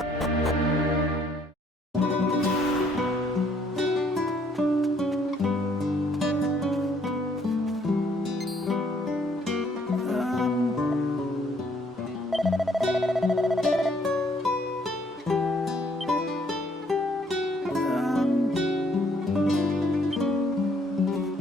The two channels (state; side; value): normal; both; correlation 0.65